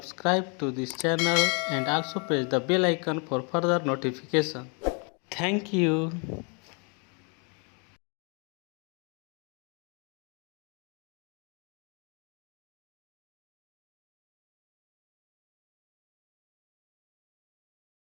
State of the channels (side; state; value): right; quieter; 35.6 dB